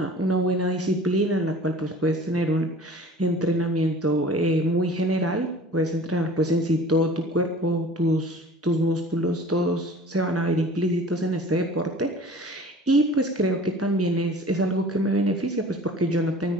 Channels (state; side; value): normal; both; correlation 0.44